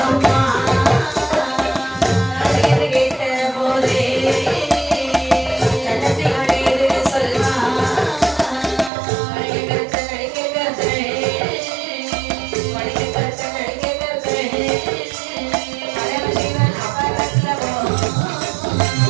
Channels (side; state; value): left; drops out; at 8.9 s